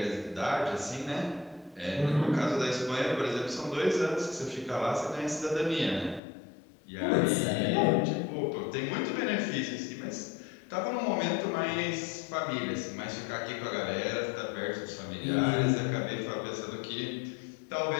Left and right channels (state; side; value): drops out; right; at 6.2 s